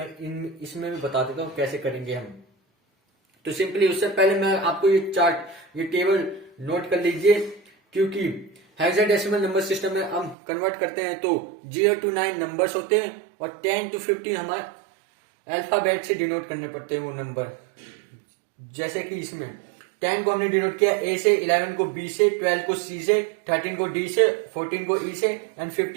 इसमें भी बता देता हूँ कैसे करेंगे हम. तो सिंपली उससे पहले मैं आपको ये चार्ट, ये टेबल नोट कर लीजिए, क्योंकि हेक्साडेसिमल नंबर सिस्टम में हम कन्वर्ट करते हैं तो 0 to 9 नंबर्स होते हैं और 10 to 15 हमारे अल्फाबेट से डिनोट करने पड़ते हैं वो नंबर. जैसे कि इसमें 10 को हमने डिनोट किया A से, 11 को B से, 12 को C से, 13 को D से, 14 को E से एंड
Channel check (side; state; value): left; drops out; at 10.4 s